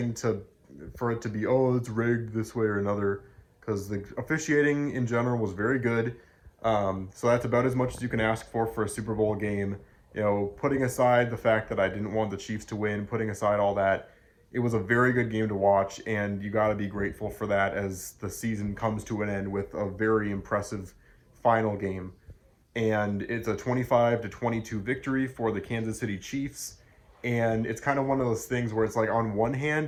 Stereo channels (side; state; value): both; identical; correlation 1.00